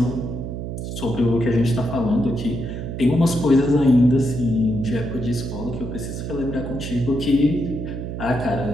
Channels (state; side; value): noise; right; hum, 6 dB below the sound